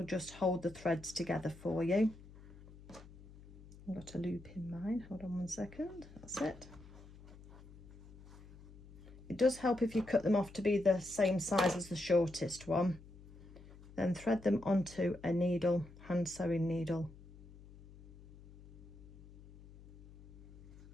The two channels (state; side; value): noise; left; hum, 19 dB below the sound